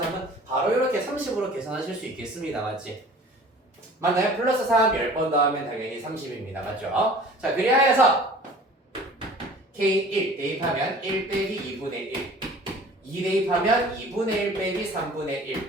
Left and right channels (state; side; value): normal; both; correlation 0.46